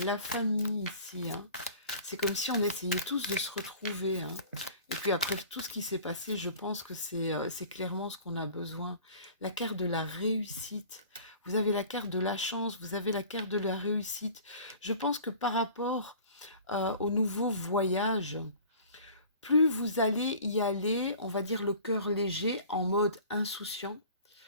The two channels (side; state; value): both; inverted; correlation -0.45